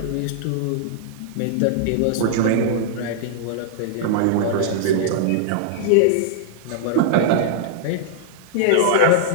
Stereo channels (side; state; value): both; different; correlation -0.01